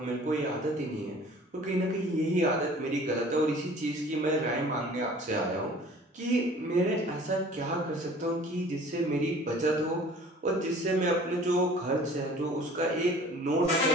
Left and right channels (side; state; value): both; normal; correlation 0.48